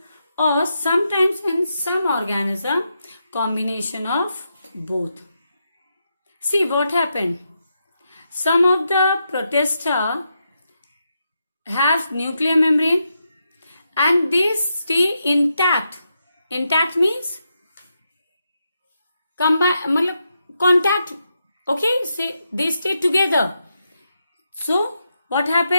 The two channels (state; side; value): inverted; both; correlation -0.84